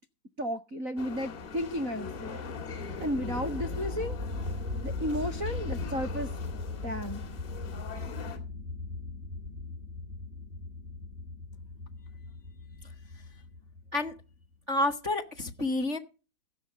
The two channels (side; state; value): left; late; 3.4 ms